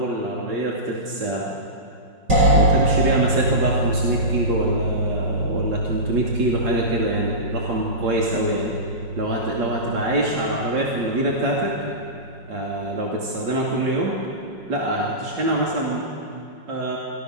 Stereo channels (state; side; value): late; left; 5.5 ms